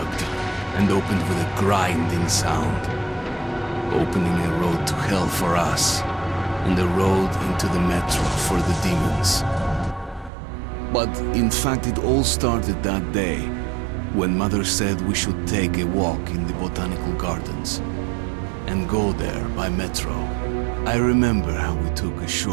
and opened with a grinding sound, opening a road to hell for us and a road into the metro for the demons. But in fact it all started that day when Mother said we should take a walk in the botanical gardens and go there by metro. I remember how we took a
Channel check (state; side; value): drops out; left; at 10.3 s